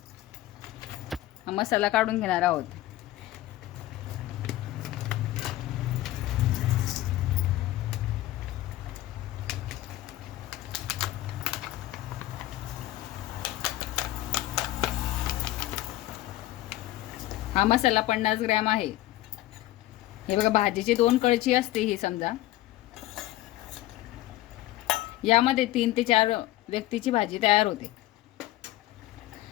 मसाला काढून घेणार आहोत। हा मसाला 50 ग्रॅम आहे। हे बघा, भाजीची 2 कळची असते ही समजा। यामध्ये 3 ते 4 व्यक्तीची भाजी तयार होते।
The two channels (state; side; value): quieter; right; 15.8 dB